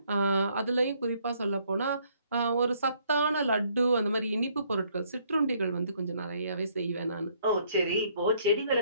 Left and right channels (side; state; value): both; inverted; correlation -0.66